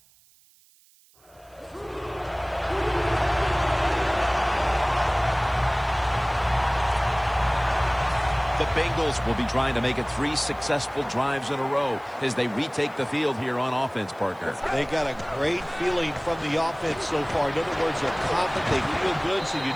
The Bengals will be trying to make it 3 successful drives in a row as they retake the field here on offense, partner. They got a great feeling from the offense so far. In other words, they're confident, they feel good, so you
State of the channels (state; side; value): noise; right; hiss, 30 dB below the sound